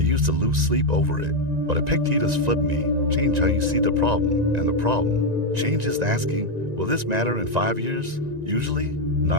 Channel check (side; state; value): left; late; 1.9 ms